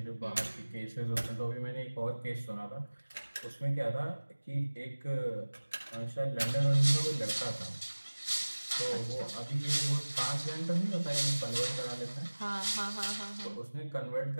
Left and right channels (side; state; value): both; inverted; correlation -1.00